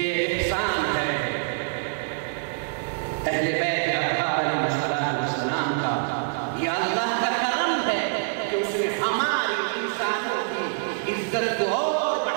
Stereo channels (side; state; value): left; silent; digital silence